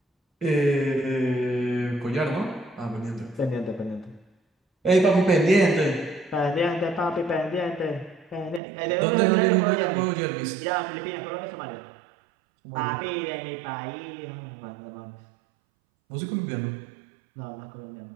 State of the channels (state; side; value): drops out; left; at 8.6 s